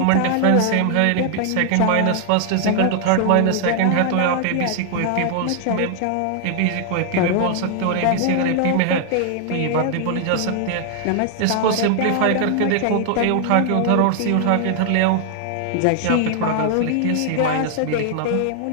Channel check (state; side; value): different; both; correlation 0.00